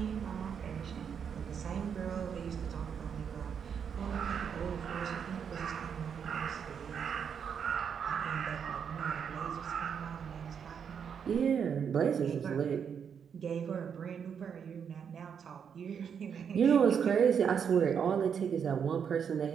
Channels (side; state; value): left; quieter; 7.3 dB